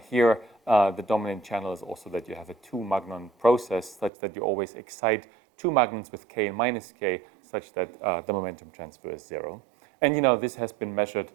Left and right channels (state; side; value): drops out; left; at 4.1 s